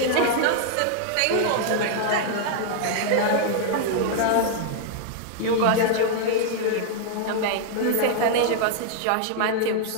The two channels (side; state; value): both; different; correlation -0.01